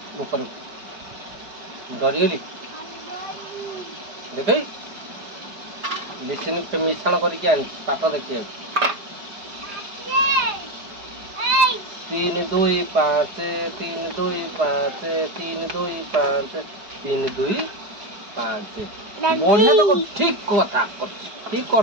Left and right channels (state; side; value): late; left; 4.9 ms